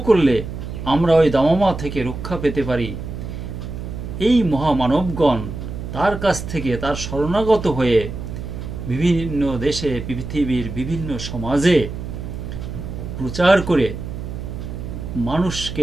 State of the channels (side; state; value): right; noise; hum, 8 dB below the sound